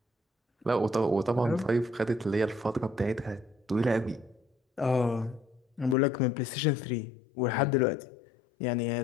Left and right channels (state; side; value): drops out; right; at 6.0 s